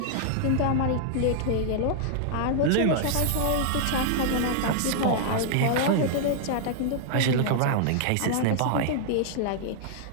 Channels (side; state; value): both; different; correlation -0.01